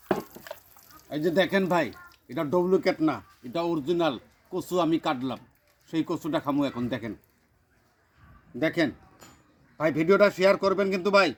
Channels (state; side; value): identical; both; correlation 1.00